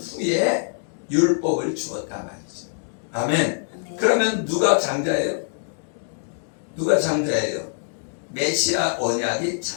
율법을 주었단 말이죠. 아멘. 아멘. 그러면 누가 장자예요? 누가 장자예요? 메시아 언약이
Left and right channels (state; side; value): silent; right; digital silence